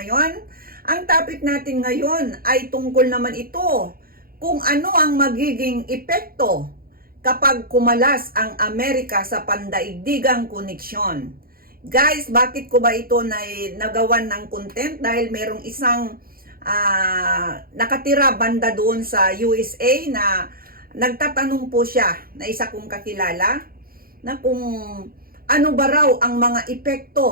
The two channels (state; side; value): late; left; 0.43 ms